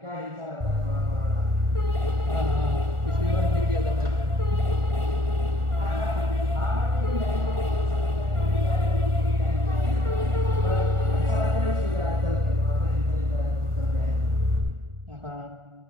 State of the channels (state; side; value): late; left; 1.4 ms